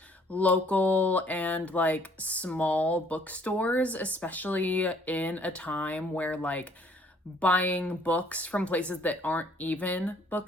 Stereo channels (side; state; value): both; normal; correlation 0.60